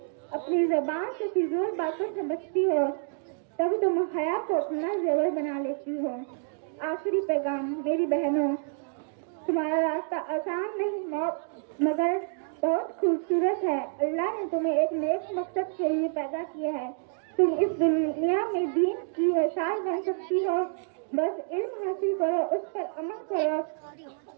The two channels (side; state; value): left; silent; 59 dB below the other